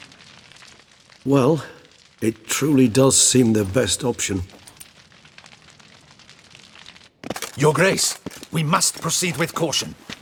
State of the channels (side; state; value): both; identical; correlation 1.00